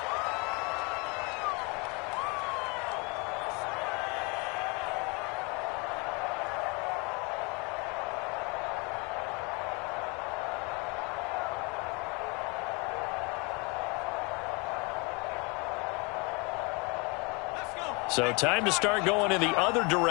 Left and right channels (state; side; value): quieter; right; 29.9 dB